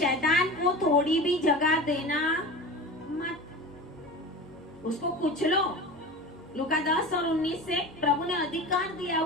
को थोड़ी भी जगह देना मत, उसको कुचलो। लूका 10 और 19 से प्रभु ने अधिकार दिया,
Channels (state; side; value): noise; left; hum, 30 dB below the sound